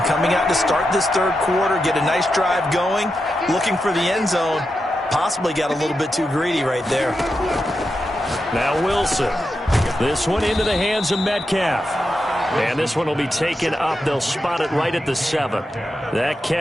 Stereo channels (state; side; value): normal; both; correlation 0.88